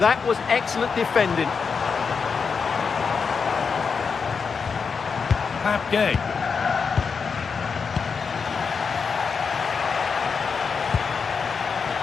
was excellent defending. Pap Gay.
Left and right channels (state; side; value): quieter; right; 5.6 dB